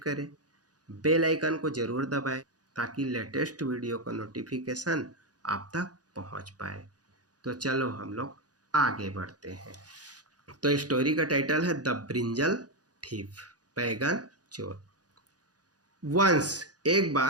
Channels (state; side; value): late; left; 0.68 ms